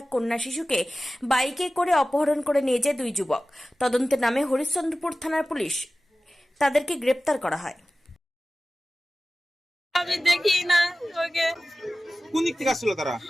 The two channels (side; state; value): both; normal; correlation 0.96